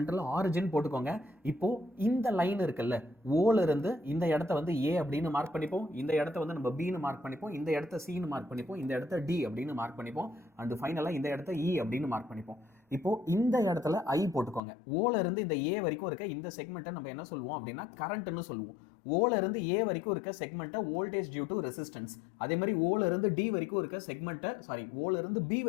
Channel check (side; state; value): right; drops out; at 14.6 s